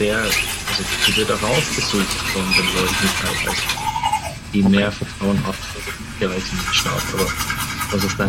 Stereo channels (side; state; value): both; identical; correlation 1.00